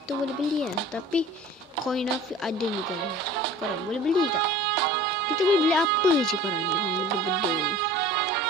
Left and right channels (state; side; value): normal; both; correlation 0.44